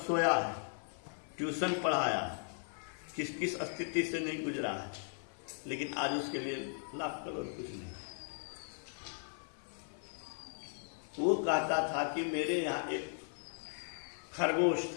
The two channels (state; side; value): silent; right; 53 dB below the other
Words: सोया है, ट्यूशन पढ़ाया है, किस किस स्थिति से नहीं गुजरा है, लेकिन आज उसके लिए लाख करोड़ कुछ नहीं। वो कहता था कि मेरे यहाँ एक खरगोश